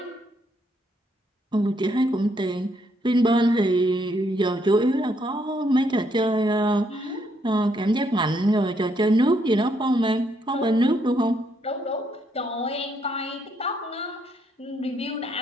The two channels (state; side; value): normal; both; correlation 0.73